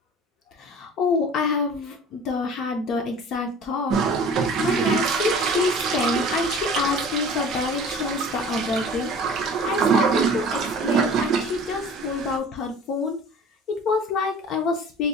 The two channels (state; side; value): normal; both; correlation 0.43